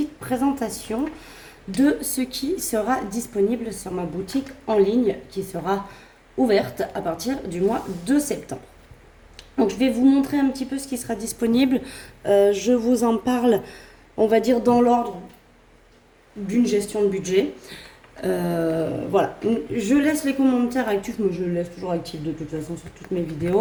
présentation de ce qui sera disponible sur ma boutique en ligne qui sera ouverte à partir du mois de septembre. Donc je vais vous montrer un petit peu ce qui sera disponible. Je vous en parle, on va dire dans l'ordre d'une gestion de budget. Voilà, je laisse les commentaires actifs, mais je les laisse toujours actifs de toute façon sur toutes mes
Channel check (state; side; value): identical; both; correlation 1.00